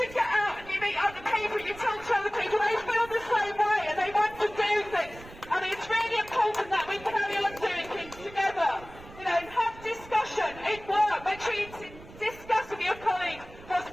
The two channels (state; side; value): noise; right; rumble, 18 dB below the sound